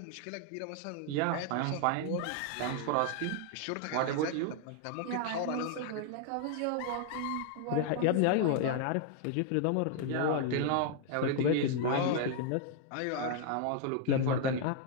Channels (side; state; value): both; different; correlation 0.00